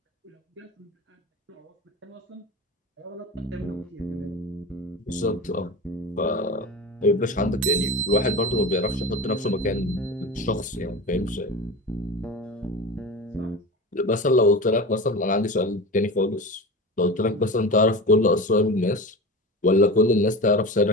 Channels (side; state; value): both; normal; correlation 0.29